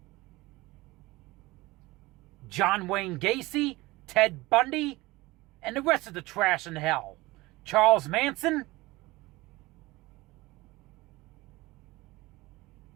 John Wayne Gacy, Ted Bundy, and the rest of the trash in hell. Charles Manson,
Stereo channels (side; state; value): left; quieter; 20.7 dB